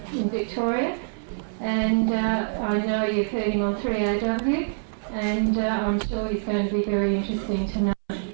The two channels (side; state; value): left; silent; 61 dB below the other